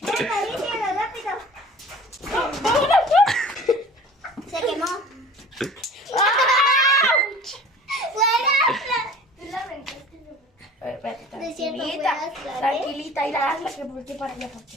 Acaríciala, rápido. Se quemó. De cierto, voy a hacer, Tranquilita, ir a hazla que voltee para allá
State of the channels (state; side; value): normal; both; correlation 0.44